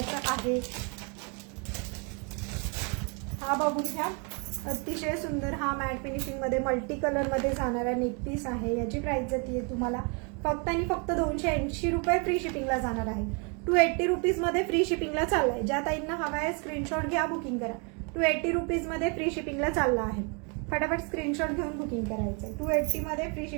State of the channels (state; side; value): quieter; left; 34.7 dB